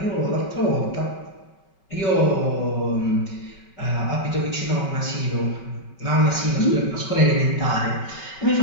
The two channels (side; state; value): right; late; 5.3 ms